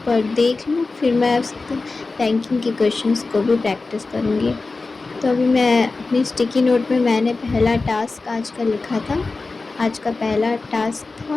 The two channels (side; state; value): right; quieter; 3.7 dB